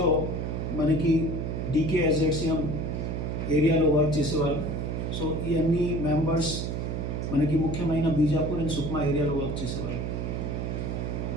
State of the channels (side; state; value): right; noise; hum, 2 dB below the sound